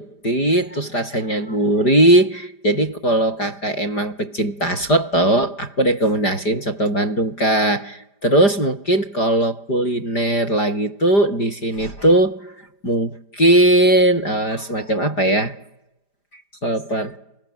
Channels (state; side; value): late; right; 5.0 ms